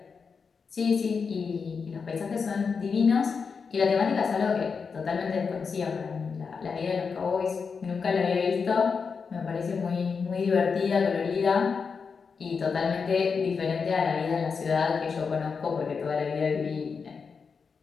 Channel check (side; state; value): right; quieter; 5.5 dB